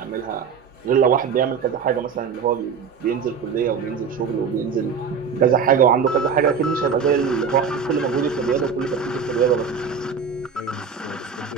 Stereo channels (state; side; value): quieter; left; 6.3 dB